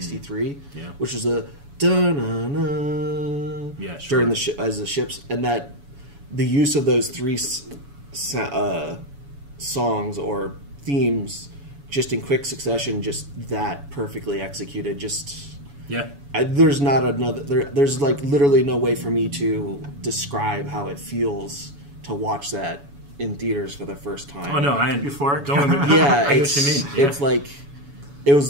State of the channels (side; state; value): left; late; 7.1 ms